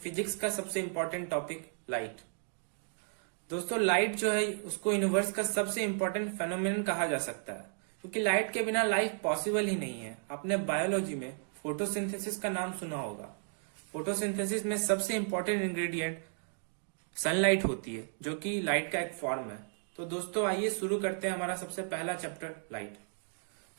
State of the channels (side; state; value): left; silent; digital silence